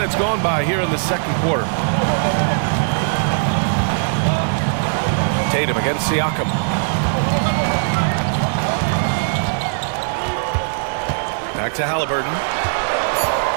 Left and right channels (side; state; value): left; silent; digital silence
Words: gone by here in the second quarter. Tatum against Siakam. Back to Halliburton.